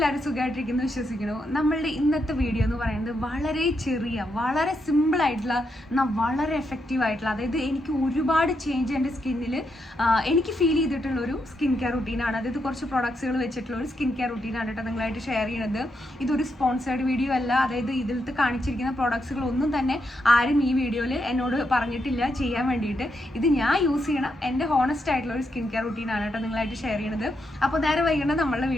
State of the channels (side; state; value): both; normal; correlation 0.81